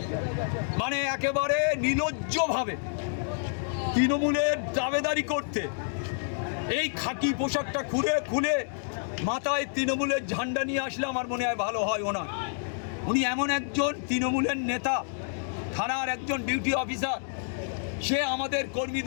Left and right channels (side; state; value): right; silent; digital silence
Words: মানে একেবারে নির্লজ্জভাবে তৃণমূলের দাবেদারি করতে এই খাকি পোশাকটা খুলে মাথায় তৃণমূলের ঝান্ডা নিয়ে আসলে আমার মনে হয় ভালো হয়। উনি এমন একজন তৃণমূলের নেতা, থানার একজন ডিউটি অফিসার, সে আমাদের